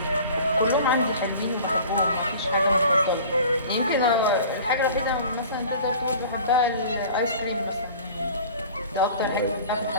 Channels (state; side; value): inverted; both; correlation -0.43